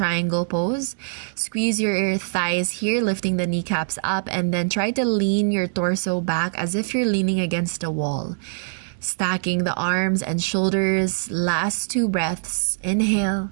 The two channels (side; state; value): left; silent; 63 dB below the other